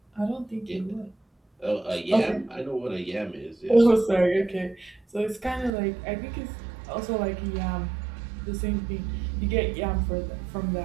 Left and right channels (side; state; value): left; drops out; at 5.7 s